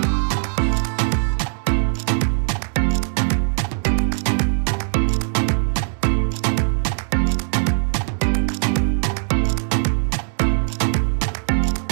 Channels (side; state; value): left; silent; digital silence